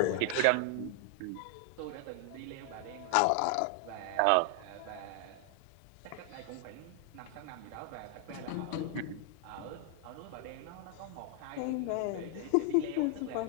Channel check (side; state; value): both; different; correlation 0.00